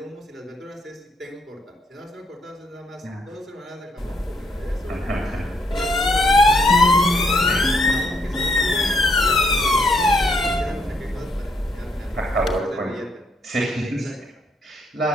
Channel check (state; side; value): normal; both; correlation 0.73